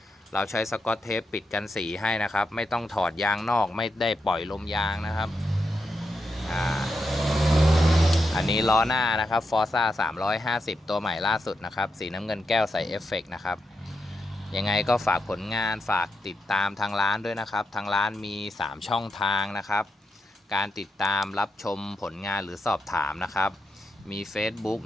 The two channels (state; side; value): normal; both; correlation 0.85